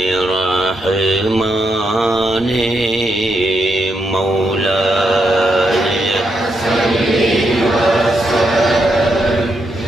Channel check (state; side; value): normal; both; correlation 0.80